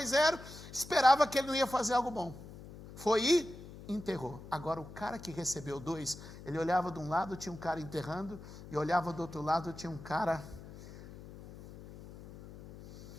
0, esperava que ele não ia fazer algo bom. Foi e enterrou. Agora, o cara que recebeu 2, ele olhava de um lado, tinha um cara enterrando, e olhava do outro lado, tinha um cara...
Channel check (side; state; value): left; noise; hum, 15 dB below the sound